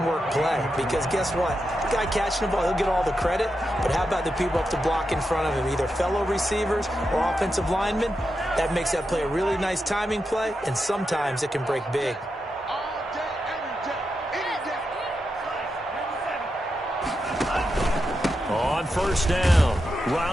play. Because guess what? The guy catching the ball, he'll get all the credit. But how about the people up to block in front of him, either fellow receivers or offensive linemen? That makes that play a really nice timing play, and sometimes it can break big. On 1st down,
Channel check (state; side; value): normal; both; correlation 0.87